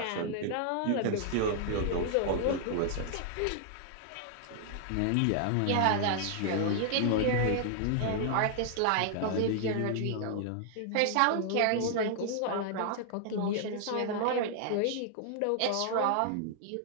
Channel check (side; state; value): both; different; correlation 0.00